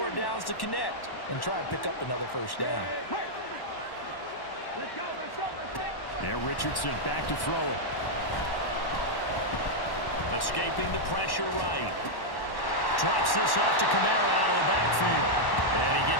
downs to connect and try and pick up another first down. There, Richardson back to throw it. Escaping the pressure right. Drops this off to Kamara out of the backfield. And he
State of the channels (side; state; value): right; late; 1.1 ms